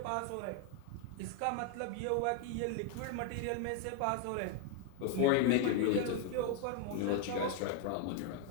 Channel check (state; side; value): different; both; correlation 0.01